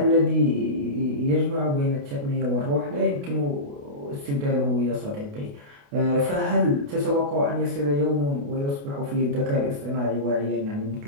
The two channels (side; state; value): left; late; 28 ms